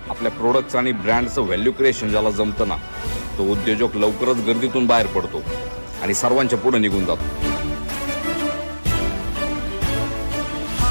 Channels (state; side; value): inverted; both; correlation -1.00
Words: आपल्या प्रोडक्ट्स आणि ब्रँडचं value creation ज्याला जमतं ना, तो उद्योजक लवकरच गर्दीतून बाहेर पडतो आणि सर्वांच्या पुढे निघून जातो.